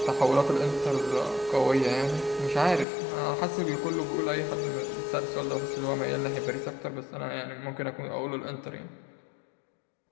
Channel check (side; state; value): right; drops out; at 2.9 s